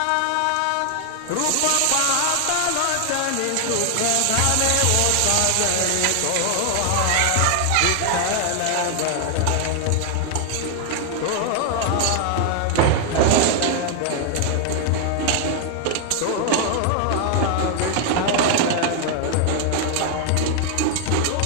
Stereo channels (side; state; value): both; different; correlation 0.00